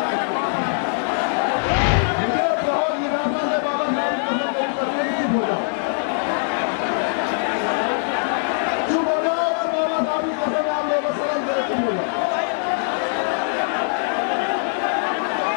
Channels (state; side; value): silent; right; 63 dB below the other